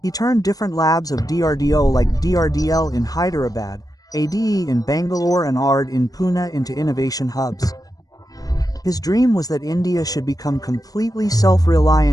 He turned different labs of DRDO like DRDL in Hyderabad, ADE in Bangalore and ARD in Pune into innovation hubs. His dream was that India should become completely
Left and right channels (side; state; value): right; late; 0.18 ms